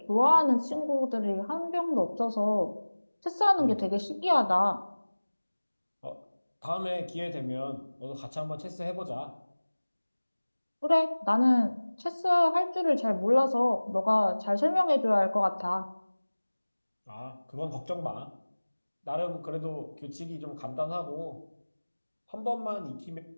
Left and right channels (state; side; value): inverted; both; correlation -1.00